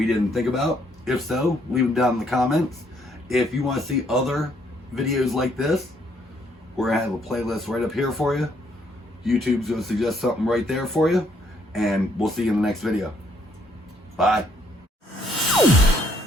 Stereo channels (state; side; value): normal; both; correlation 0.68